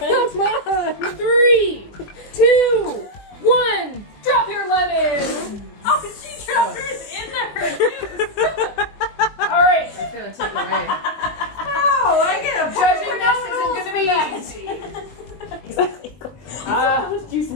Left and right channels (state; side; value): late; right; 21 ms